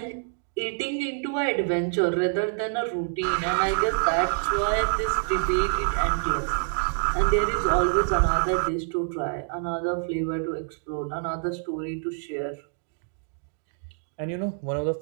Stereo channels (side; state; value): left; silent; digital silence